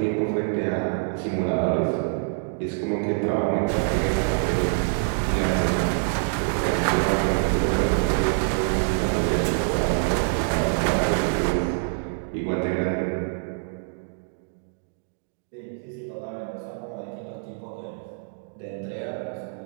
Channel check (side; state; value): left; silent; digital silence